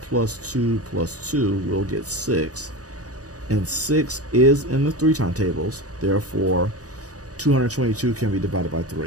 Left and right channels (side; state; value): left; late; 0.67 ms